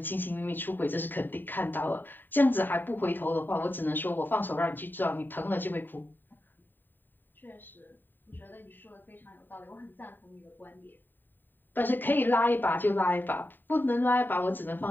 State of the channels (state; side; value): late; right; 0.092 ms